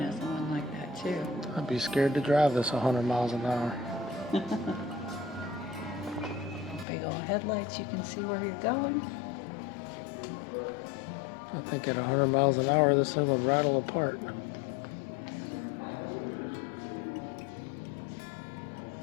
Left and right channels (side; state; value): right; drops out; at 6.9 s